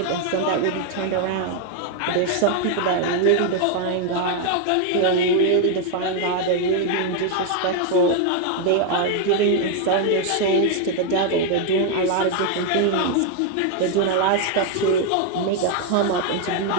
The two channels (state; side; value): different; both; correlation 0.00